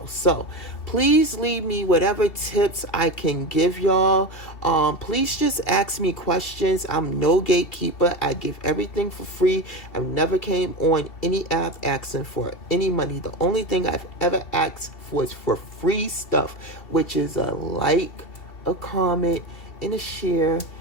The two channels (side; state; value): right; late; 2.7 ms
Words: So please leave me whatever tips I can give y'all. Please just ask me questions. I'm no gatekeeper. I give everything for free. I've never came on any app asking for any money. The only thing I've ever asked for is for free stuff, which is a like, a comment, and a share,